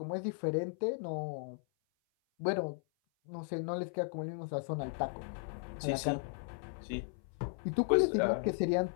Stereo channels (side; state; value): right; silent; 54 dB below the other